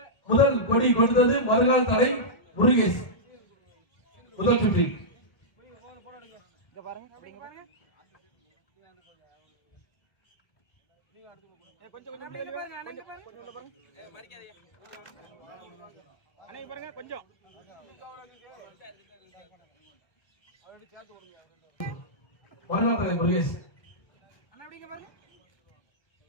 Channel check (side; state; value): right; late; 1.5 ms